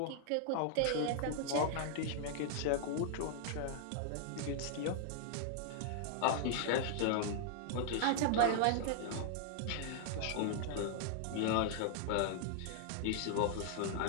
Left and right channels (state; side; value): different; both; correlation -0.01